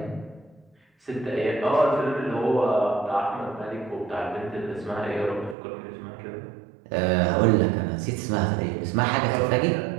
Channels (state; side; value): drops out; left; at 5.6 s